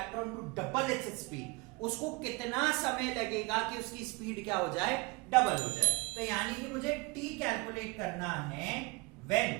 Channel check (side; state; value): left; quieter; 26.8 dB